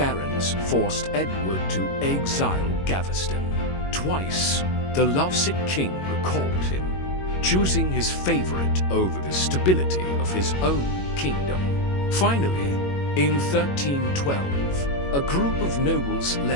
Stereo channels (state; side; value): late; right; 21 ms